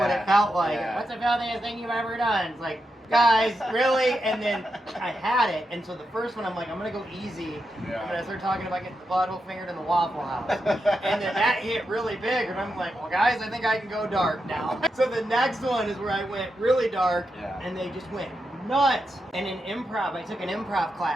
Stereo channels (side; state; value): both; normal; correlation 0.86